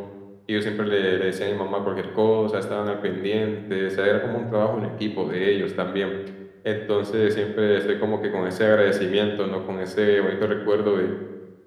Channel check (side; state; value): both; identical; correlation 1.00